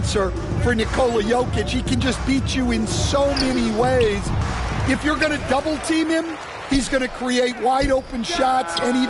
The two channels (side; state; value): both; identical; correlation 1.00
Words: for Nikola Jokic. He can just beat you in so many ways. If you're going to double team him, he's going to create wide open shots and